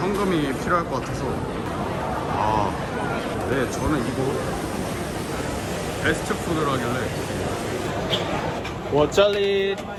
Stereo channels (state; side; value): identical; both; correlation 1.00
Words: 필요할 것 같아서. 아, 네, 저는 이거 베스트 푸드라길래. 我这里